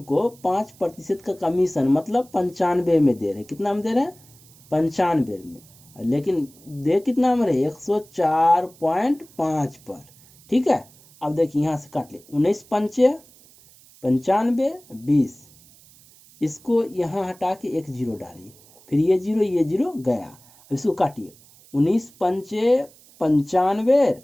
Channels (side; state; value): right; noise; hiss, 26 dB below the sound